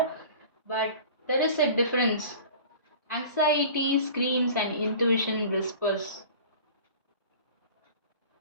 but there is a difference. Anxiety screams and intuition whispers.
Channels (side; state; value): both; inverted; correlation -0.41